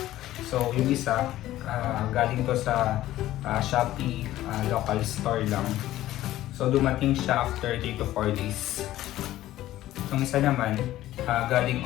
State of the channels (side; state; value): right; quieter; 14.6 dB